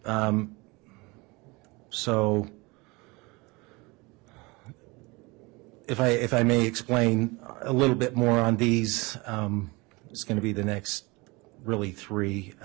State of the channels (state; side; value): quieter; left; 25.3 dB